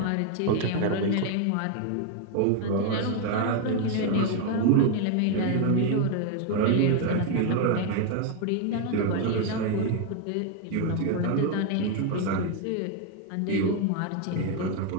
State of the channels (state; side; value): different; both; correlation 0.01